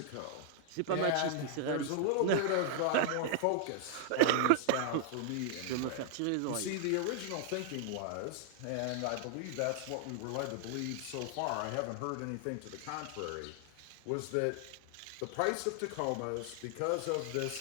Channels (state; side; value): different; both; correlation 0.00